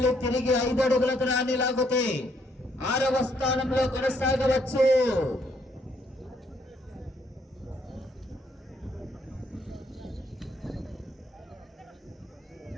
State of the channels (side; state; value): both; normal; correlation 0.70